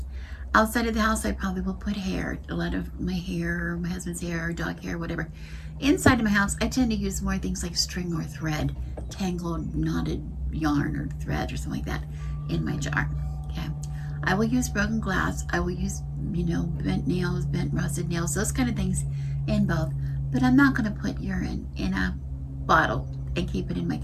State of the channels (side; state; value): both; identical; correlation 1.00